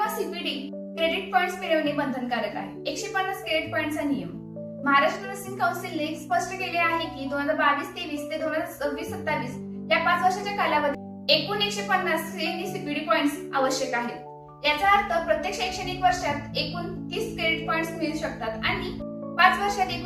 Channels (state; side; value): identical; both; correlation 1.00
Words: सीपीडी क्रेडिट पॉइंट्स मिळवणे बंधनकारक आहे। 150 क्रेडिट पॉइंटचा नियम महाराष्ट्र नर्सिंग काउन्सिलने स्पष्ट केले आहे की 2022-23 ते 2026-27 या 5 वर्षाच्या कालावधीत एकूण 150 सीएनई सीपीडी पॉइंट्स आवश्यक आहेत। याचा अर्थ प्रत्येक शैक्षणिक वर्षात एकूण 30 क्रेडिट पॉइंट्स मिळू शकतात आणि 5 वर्षात